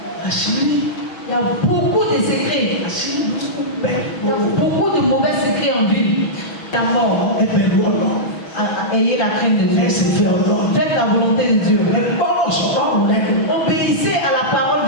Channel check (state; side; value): late; right; 6.2 ms